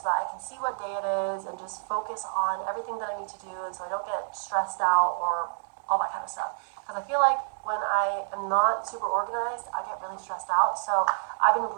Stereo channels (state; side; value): silent; left; digital silence